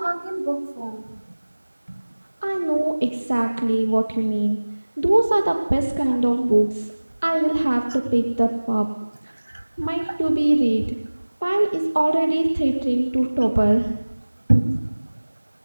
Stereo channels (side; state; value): both; inverted; correlation -1.00